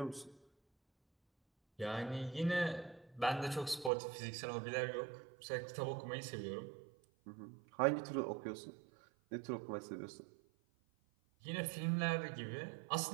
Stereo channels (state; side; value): drops out; left; at 3.9 s